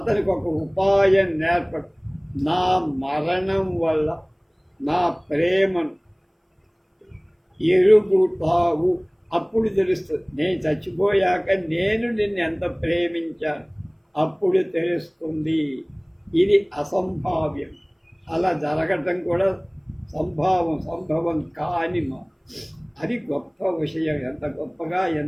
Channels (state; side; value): identical; both; correlation 1.00